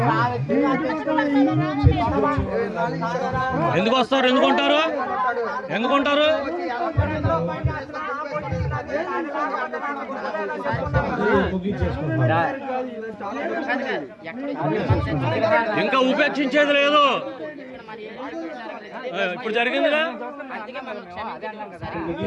ఎందుకు వస్తారు? ఎందుకుంటారు? ఎందుకుంటారు? ఇంకా ఉపేక్షించేది లేదు. ఇప్పుడు జరిగిందిగా.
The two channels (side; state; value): both; identical; correlation 1.00